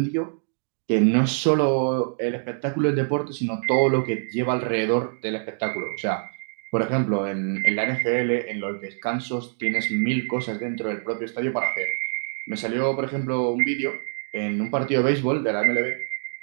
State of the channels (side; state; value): left; silent; 62 dB below the other